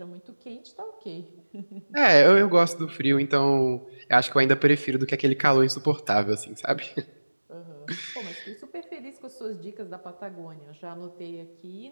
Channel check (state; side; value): inverted; both; correlation -1.00